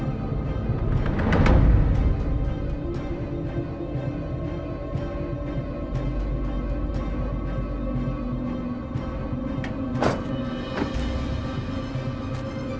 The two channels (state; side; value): identical; both; correlation 1.00